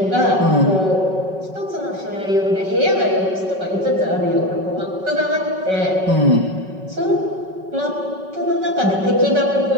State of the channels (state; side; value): late; left; 5.3 ms